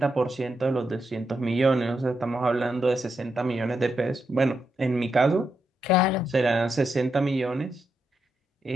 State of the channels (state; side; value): normal; both; correlation 0.83